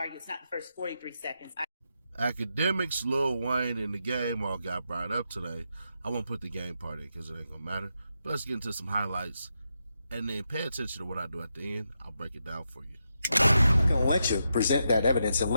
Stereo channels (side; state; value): both; inverted; correlation -0.84